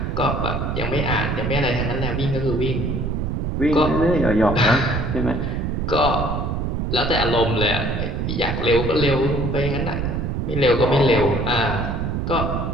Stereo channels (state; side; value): noise; right; rumble, 1 dB below the sound